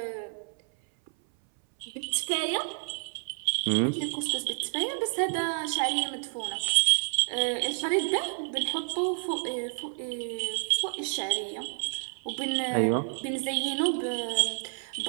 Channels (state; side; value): silent; left; 58 dB below the other